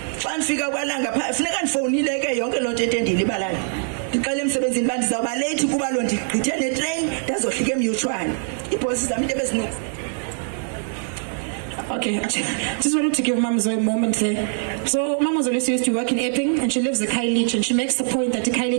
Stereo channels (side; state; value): left; silent; 59 dB below the other